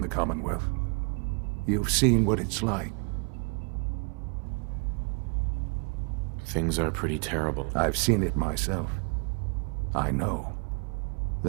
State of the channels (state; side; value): quieter; left; 35.4 dB